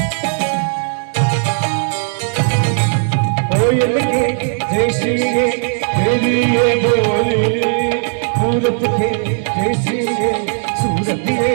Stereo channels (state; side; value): silent; left; 69 dB below the other